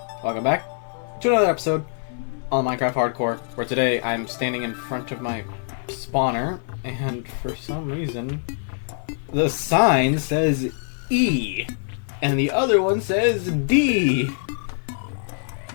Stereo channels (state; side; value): silent; right; 63 dB below the other